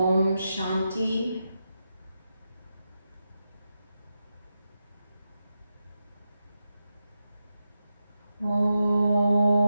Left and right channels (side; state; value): both; inverted; correlation -0.88